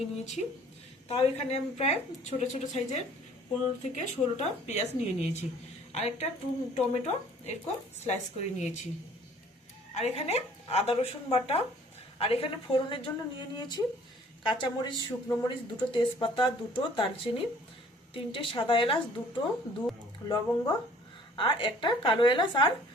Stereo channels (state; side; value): normal; both; correlation 0.54